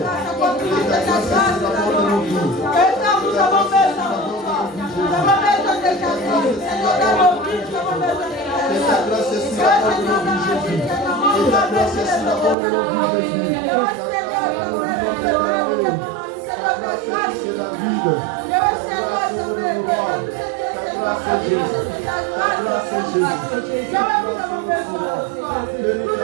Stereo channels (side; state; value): left; drops out; at 12.6 s